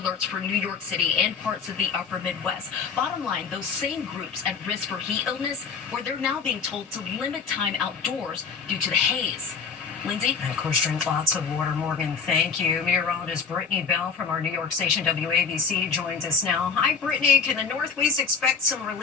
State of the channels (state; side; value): quieter; right; 5.6 dB